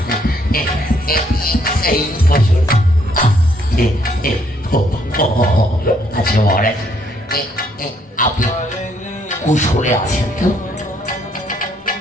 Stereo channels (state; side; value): normal; both; correlation 0.69